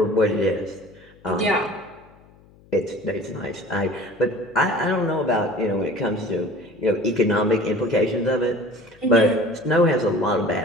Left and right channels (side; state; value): left; noise; hum, 27 dB below the sound